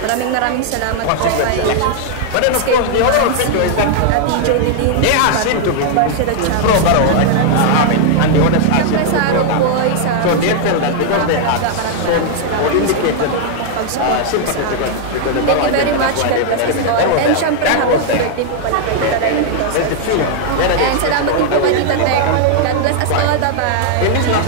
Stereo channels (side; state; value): both; different; correlation 0.00